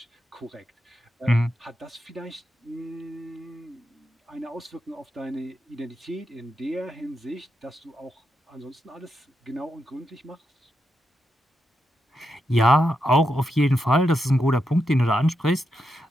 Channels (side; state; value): both; normal; correlation 0.85